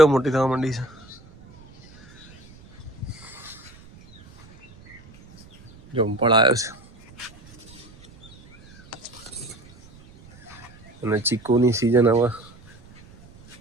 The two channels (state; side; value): noise; right; rumble, 23 dB below the sound